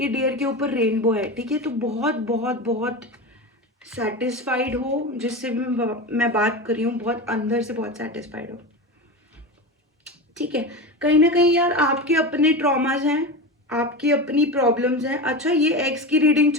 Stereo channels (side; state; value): both; normal; correlation 0.24